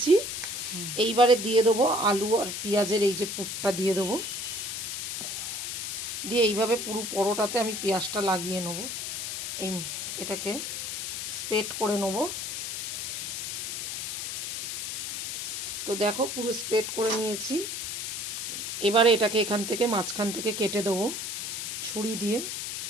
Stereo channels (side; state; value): left; noise; hiss, 4 dB below the sound